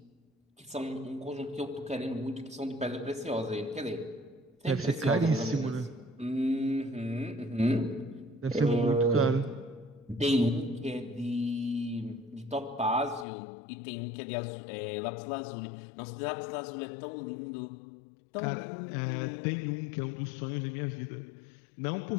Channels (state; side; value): drops out; right; at 13.2 s